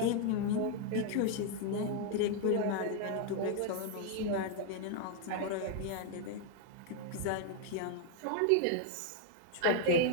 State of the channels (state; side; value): different; both; correlation 0.00